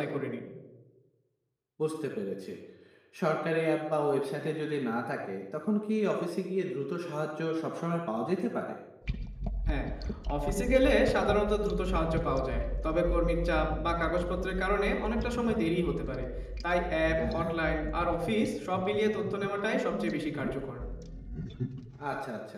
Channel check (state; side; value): identical; both; correlation 1.00